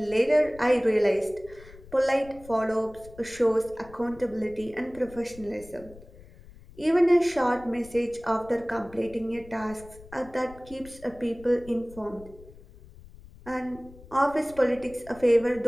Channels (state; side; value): noise; left; rumble, 20 dB below the sound